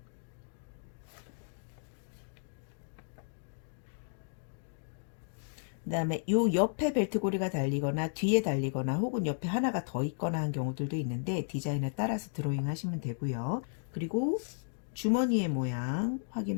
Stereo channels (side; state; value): right; silent; digital silence